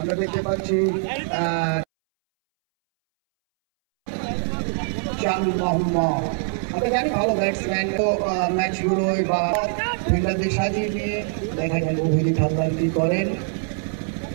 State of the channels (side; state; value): left; silent; 63 dB below the other